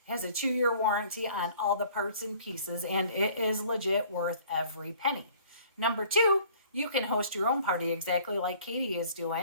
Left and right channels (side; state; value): both; inverted; correlation -0.54